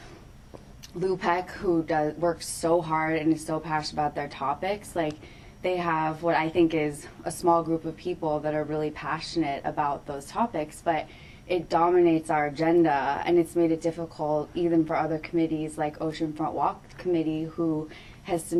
Lupec, who works so hard and is so passionate about their topics, like they have what I think is a small group of people that are really passionate about those topics, but it dominates our agenda and it's made it difficult even for other committees like Oceanfront Walk Committee, who has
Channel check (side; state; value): both; identical; correlation 1.00